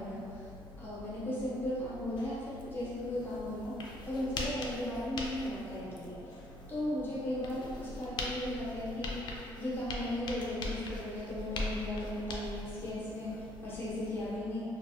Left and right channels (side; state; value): both; normal; correlation 0.65